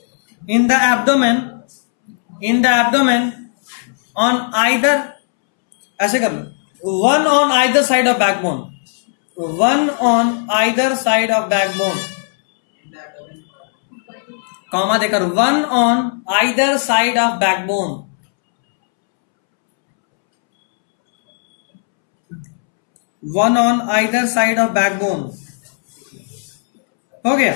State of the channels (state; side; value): silent; right; 69 dB below the other